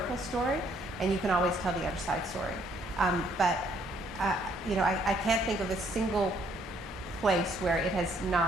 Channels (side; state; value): both; normal; correlation 0.67